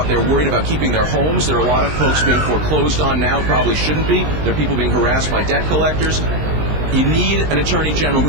They're worried about keeping their homes. There are a lot of folks being foreclosed on now, probably shouldn't be. There are people being harassed by debt collectors. You need an Attorney General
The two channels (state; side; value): late; left; 19 ms